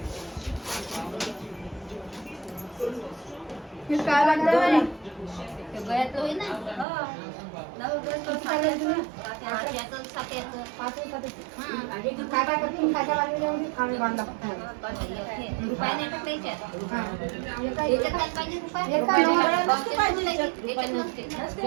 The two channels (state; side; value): drops out; left; at 6.9 s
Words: काय लागतं गळ्यातलं होईल ना.